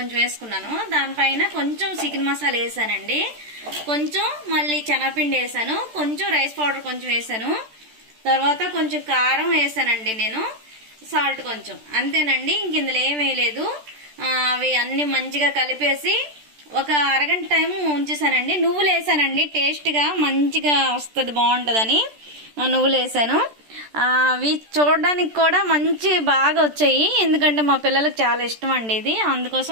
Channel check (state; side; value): late; left; 14 ms